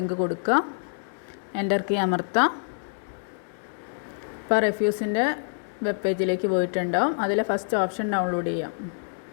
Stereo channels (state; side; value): silent; right; digital silence